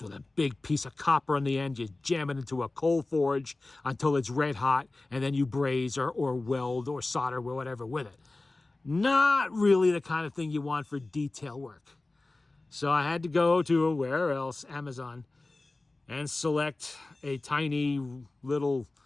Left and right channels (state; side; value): quieter; right; 3.1 dB